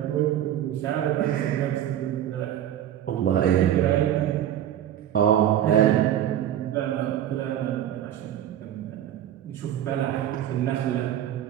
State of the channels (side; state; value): left; quieter; 11.2 dB